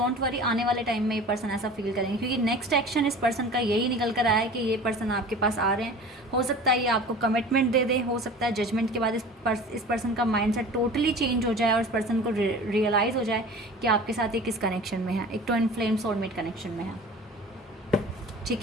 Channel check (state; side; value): normal; both; correlation 0.40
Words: वरी, आने वाले टाइम में ये पर्सन ऐसा फील करेंगे, क्योंकि नेक्स्ट एक्शन इस पर्सन का यही निकल कर आया है कि ये पर्सन आपके पास आ रहे हैं। हो सकता है ये आपको कमिटमेंट दे दे, हो सकता है जजमेंट के बाद इस पर्सन का माइंडसेट टोटली चेंज हो जाए और इस पर्सन को रियलाइज़ हो जाए कि आपके साथ एक किस कनेक्शन में है, एक ट्विन फ्लेम सोलमेट कनेक्शन में है, ठीक